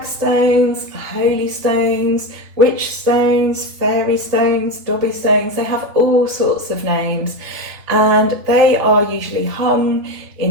holy stones, witch stones, fairy stones, dobby stones. They have all sorts of names, and they are usually hung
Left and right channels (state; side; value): late; left; 3.5 ms